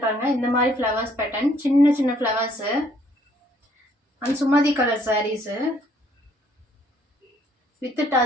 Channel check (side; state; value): both; normal; correlation 0.64